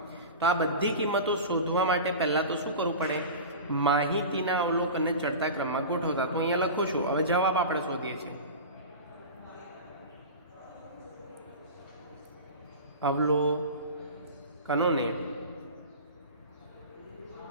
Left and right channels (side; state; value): both; inverted; correlation -0.30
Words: તો આ બધી કિંમતો શોધવા માટે પહેલાં તો શું કરવું પડે? માહિતીના અવલોકનને ચડતા ક્રમમાં ગોઠવતા. તો અહીંયા લખું છું, હવે જવાબ આપણે શોધીએ છીએ. અવલોકનોને